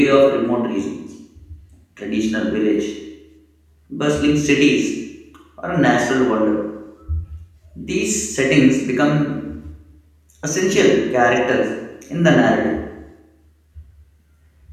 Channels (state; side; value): identical; both; correlation 1.00